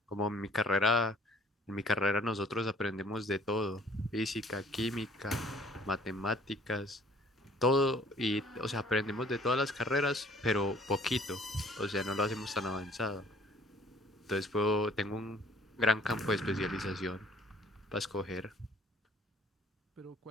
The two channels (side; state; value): both; normal; correlation 0.56